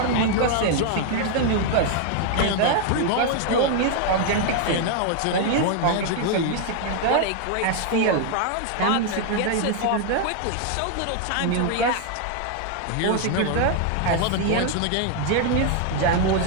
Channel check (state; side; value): different; both; correlation 0.00